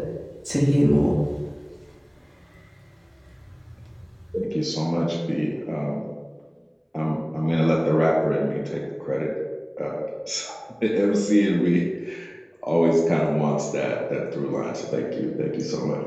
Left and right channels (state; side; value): identical; both; correlation 1.00